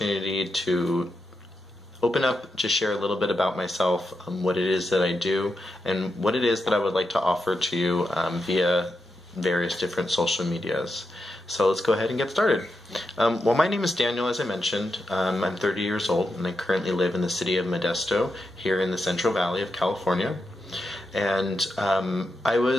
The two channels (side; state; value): both; normal; correlation 0.86